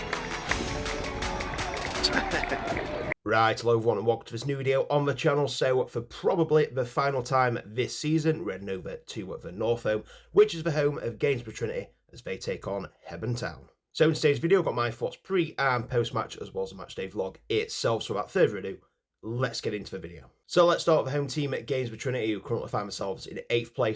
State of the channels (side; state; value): both; identical; correlation 1.00